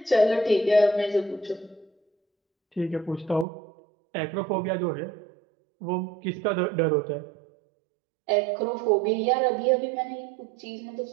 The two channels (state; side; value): drops out; left; at 3.5 s